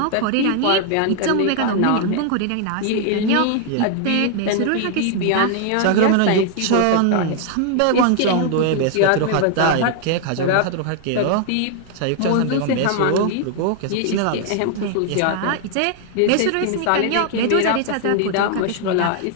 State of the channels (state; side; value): different; both; correlation 0.00